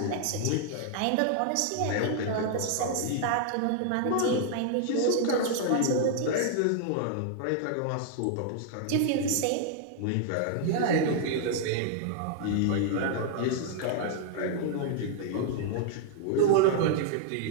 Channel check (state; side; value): different; both; correlation -0.01